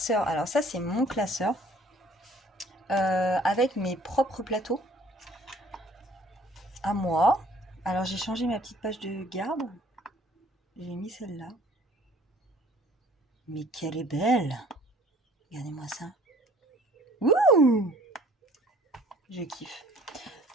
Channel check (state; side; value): normal; both; correlation 0.55